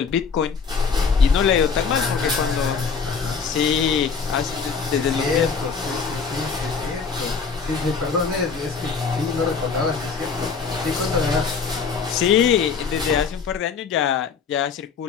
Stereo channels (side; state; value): right; quieter; 5.6 dB